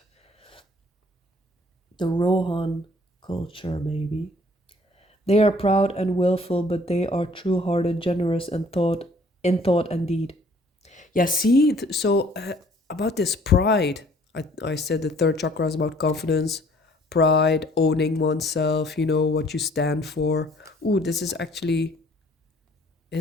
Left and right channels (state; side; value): normal; both; correlation 0.57